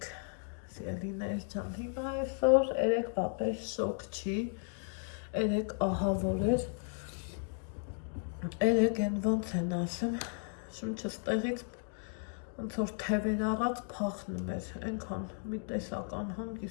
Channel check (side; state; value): right; silent; 55 dB below the other